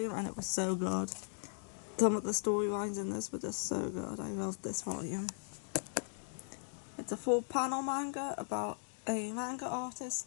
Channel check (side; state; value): right; silent; digital silence